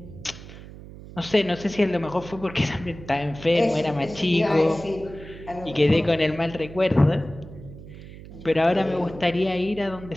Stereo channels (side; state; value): right; noise; hum, 16 dB below the sound